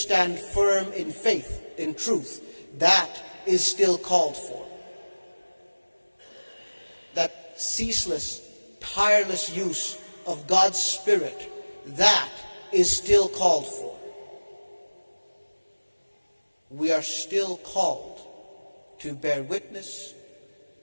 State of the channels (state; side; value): inverted; both; correlation -1.00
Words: firm in faith, in truth, that is still called for. That ceaseless, tireless use of God's Spirit, that is still called for. We are still called to bear witness